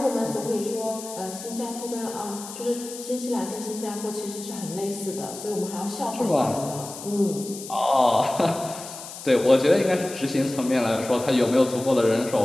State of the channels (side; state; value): left; noise; hiss, 12 dB below the sound